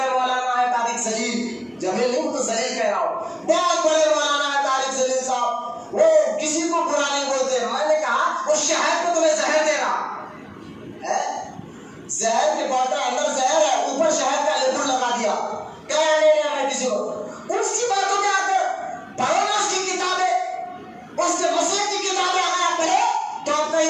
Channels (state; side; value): identical; both; correlation 1.00